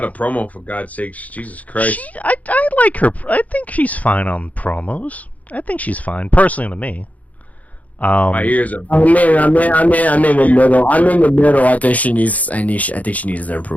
a promo, for God's sakes. Jesus Christ. I like her. I think she's fine on promos. I think she's fine, personally, to me. My ears are. I'm in the middle. I think she needs to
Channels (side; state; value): right; late; 0.072 ms